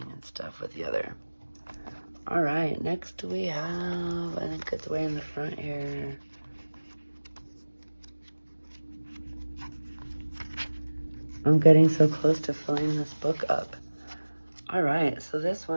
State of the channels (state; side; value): inverted; both; correlation -1.00